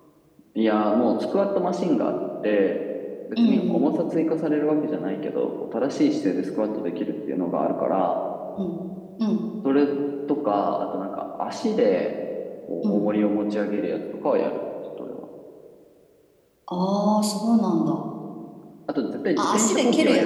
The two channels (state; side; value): identical; both; correlation 1.00